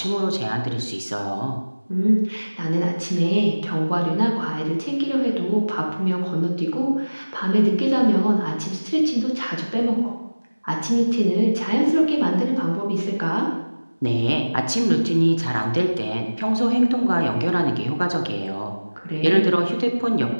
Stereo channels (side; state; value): both; inverted; correlation -1.00